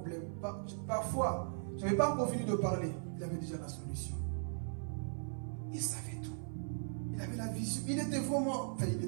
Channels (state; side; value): silent; left; 52 dB below the other